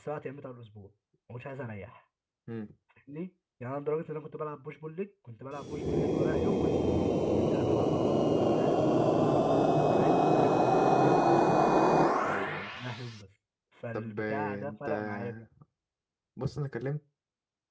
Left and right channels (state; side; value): identical; both; correlation 1.00